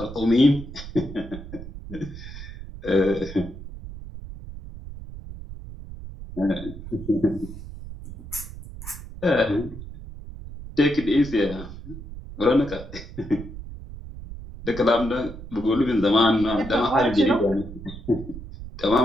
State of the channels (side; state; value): right; noise; rumble, 12 dB below the sound